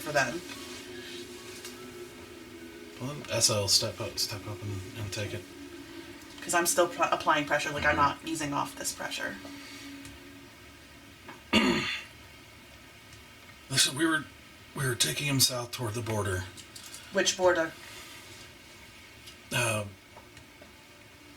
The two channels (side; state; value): both; identical; correlation 1.00